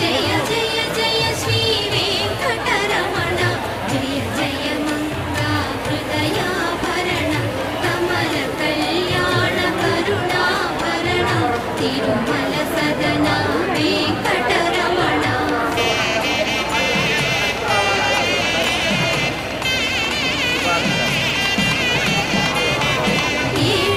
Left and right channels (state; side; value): identical; both; correlation 1.00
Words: జయ జయ శ్రీ వెంకటరమణ జయ జయ మంగా హృదయాభరణ కమల కళ్యాణ కరుణాభరణ తిరుమల